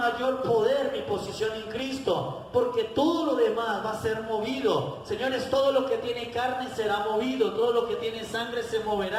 poder? Mi posición en Cristo. Porque todo lo demás va a ser movido. Señores, todo lo que tiene carne será movido, todo lo que tiene sangre se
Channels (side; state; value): both; identical; correlation 1.00